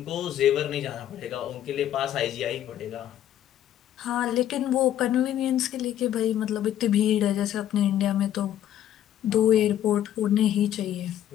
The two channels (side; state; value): right; quieter; 11.3 dB